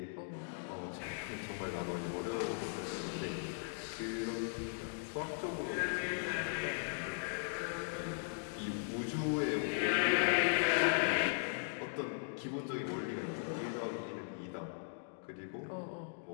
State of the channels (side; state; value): right; silent; digital silence